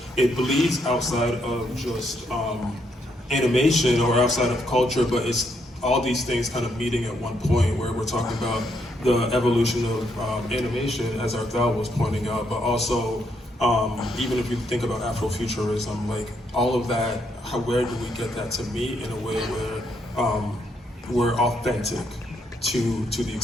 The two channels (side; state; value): both; normal; correlation 0.75